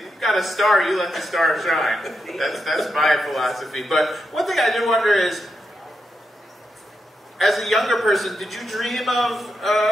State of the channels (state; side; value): normal; both; correlation 0.84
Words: you've got a star, you let the star shine. That's my philosophy. But one thing I do wonder is, as a younger person, did you dream of